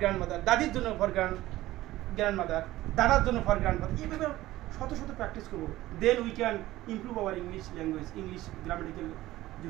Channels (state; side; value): quieter; left; 16.3 dB